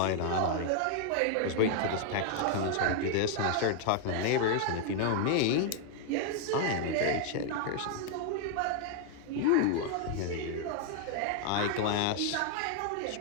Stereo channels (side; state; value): both; different; correlation 0.00